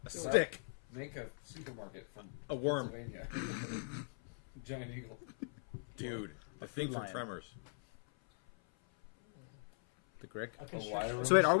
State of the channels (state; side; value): silent; right; 51 dB below the other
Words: A so stick. Make a supermarket from A worm. Pennsylvania. Giant eagle. Dude, the thing from Lion. Tremors. The Grick. A wire constrictor. room. So wait, are